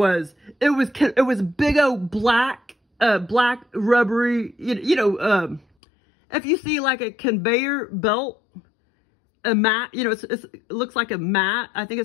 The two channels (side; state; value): right; drops out; at 5.7 s